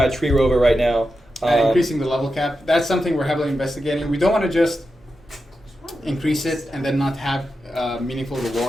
Tree Rover right now. increasing the level cap, that's something we're heavily investigating. We don't want to just increase it and then not have meaningful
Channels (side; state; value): both; normal; correlation 0.89